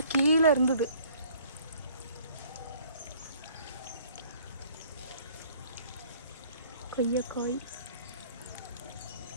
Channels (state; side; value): inverted; both; correlation -0.56